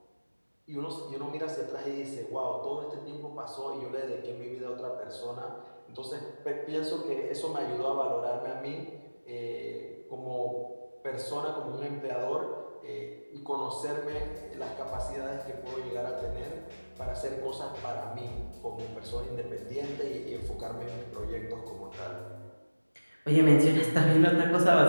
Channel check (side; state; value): both; inverted; correlation -1.00